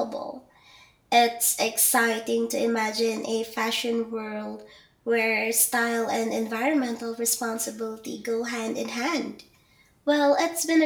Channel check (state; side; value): identical; both; correlation 1.00